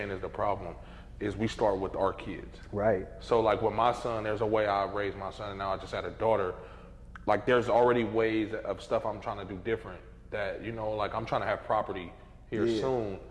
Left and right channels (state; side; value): identical; both; correlation 1.00